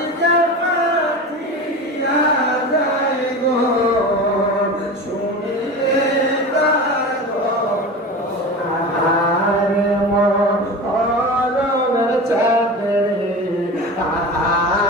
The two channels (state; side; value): normal; both; correlation 0.30